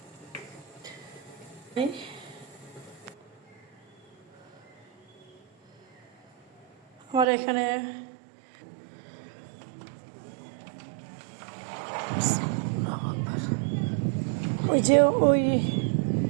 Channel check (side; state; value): left; drops out; at 7.2 s